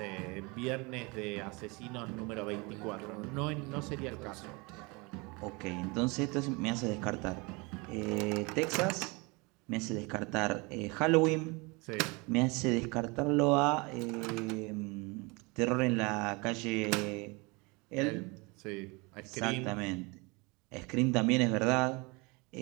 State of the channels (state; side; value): quieter; left; 27.5 dB